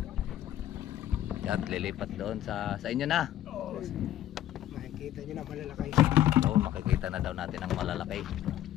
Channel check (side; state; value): right; quieter; 12.4 dB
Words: At lilipat doon sa inyo na. Makikita niyo na malalaki. Oo, makikita na daw natin ang malalaki.